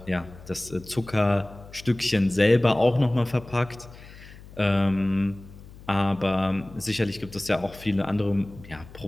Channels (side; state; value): left; noise; hum, 19 dB below the sound